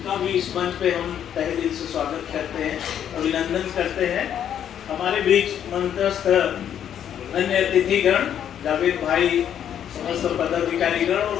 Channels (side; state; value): right; quieter; 9.5 dB